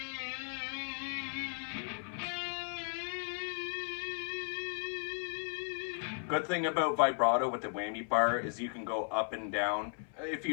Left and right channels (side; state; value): right; silent; 54 dB below the other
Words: Good thing about vibrato with the whammy bar is you can go up and down. If